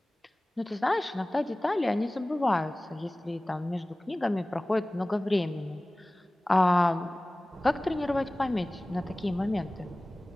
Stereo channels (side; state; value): both; normal; correlation 0.98